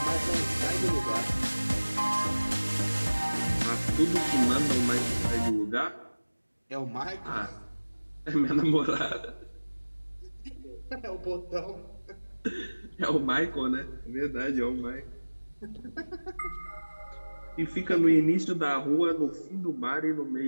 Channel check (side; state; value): both; inverted; correlation -1.00